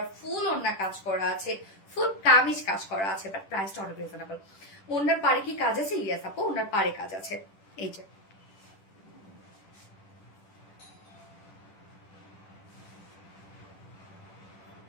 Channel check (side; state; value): right; late; 10 ms